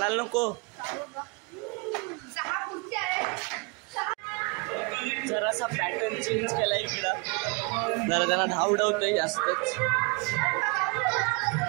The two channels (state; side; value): quieter; left; 30.5 dB